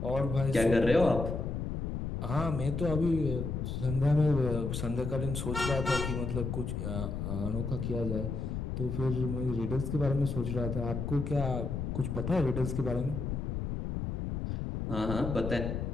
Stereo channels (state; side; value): noise; left; rumble, 3 dB below the sound